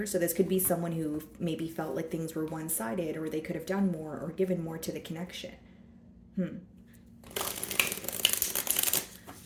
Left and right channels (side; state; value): both; identical; correlation 1.00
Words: So this could be someone who maybe felt like things were one-sided, or they could have done more or given more to the connection.